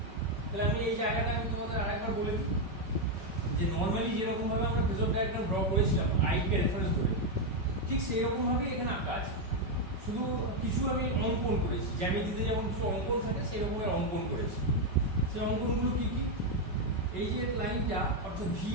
তাহলে আমি এই জায়গাটা আমি তোমাদের আরেকবার বলে দিই যে নর্মালি যেরকম ভাবে আমরা ফেজর ডায়াগ্রাম ড্র করেছিলাম আইকে রেফারেন্স ধরে, ঠিক সেই রকম ভাবে এখানে আঁকা আছে। শুধু কিছু আমি অঙ্কন করেছি, জ্যামিতিতে যেমন কিছু অঙ্কন থাকে সেই রকম অঙ্কন করেছি। সেই অঙ্কনগুলো কি কি, এই যে লাইনটা অর্থাৎ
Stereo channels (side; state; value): left; late; 5.3 ms